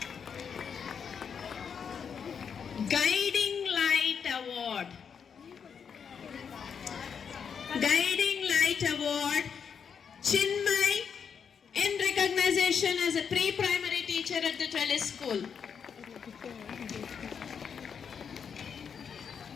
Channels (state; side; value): quieter; right; 6.8 dB